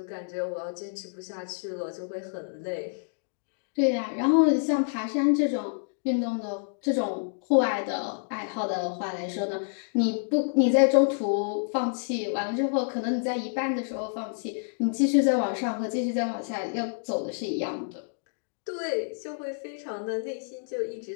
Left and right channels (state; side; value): silent; right; digital silence